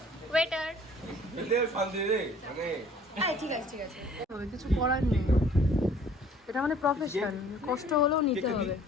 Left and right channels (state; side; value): normal; both; correlation 0.54